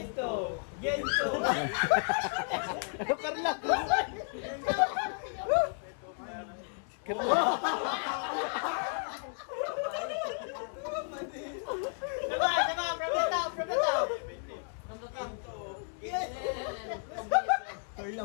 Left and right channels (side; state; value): right; silent; 56 dB below the other